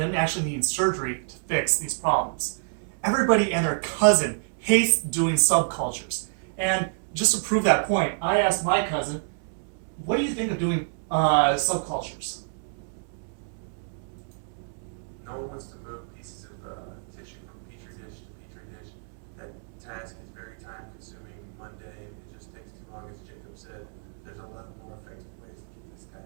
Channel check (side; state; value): left; silent; digital silence